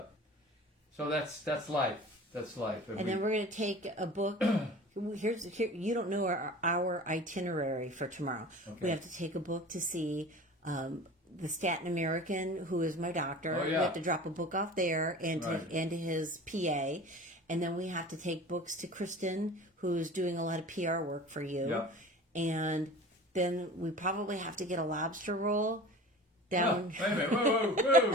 so that's life. That's life. And then we're going to take a book. Here, you don't know our itinerary for tomorrow. Okay. We have to take a book to see the Staten American, who is my doctor. Oh, yeah. We have to drop a book off there and to his PA. And then we have to take books to Kristen, who's doing a lot of PR work for you. Yeah. And then we probably have to get a lobster roll down. Oh, wait a minute. Whoa, whoa,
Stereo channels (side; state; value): both; normal; correlation 0.39